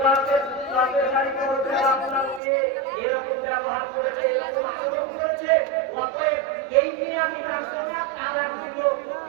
বাপের গাড়িতে বলতে আপনার মেয়ে এরকম ব্যবহার করেছে, এরকম আচরণ করেছে, অতএব এই নিয়ে আমি রাখবো না, তারা দিল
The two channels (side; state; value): left; drops out; at 2.4 s